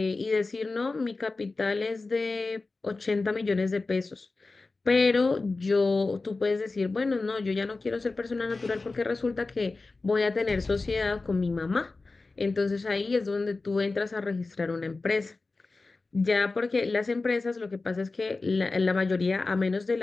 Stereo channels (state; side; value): quieter; right; 3.6 dB